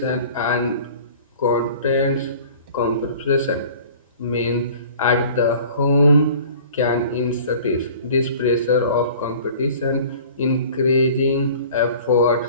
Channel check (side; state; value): both; inverted; correlation -0.46